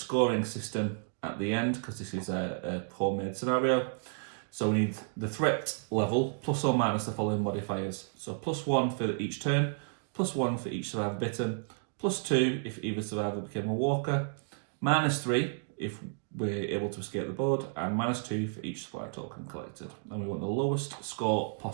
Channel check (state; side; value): silent; left; digital silence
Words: system at the end because this is a homemade scenario. So we need the threat level plus or minus the following modifiers. So +1 for each turn, +1 for each survivor bitten, +2 if either survivor became a walker, -3 if we're able to escape the board, and -2 for each supply token collected. And we want the lowest score